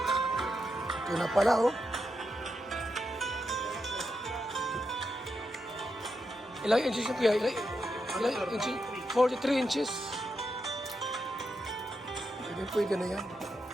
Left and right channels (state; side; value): normal; both; correlation 0.85